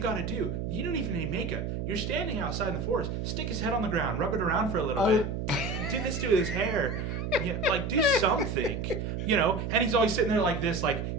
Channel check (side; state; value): right; noise; hum, 3 dB below the sound